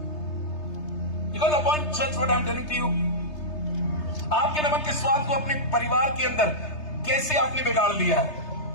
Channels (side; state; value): right; late; 3.3 ms